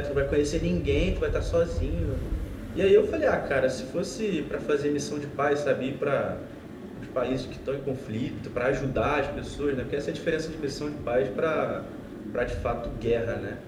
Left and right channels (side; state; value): both; identical; correlation 1.00